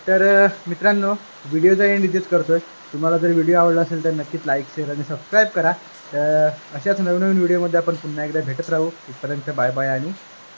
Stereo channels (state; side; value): inverted; both; correlation -1.00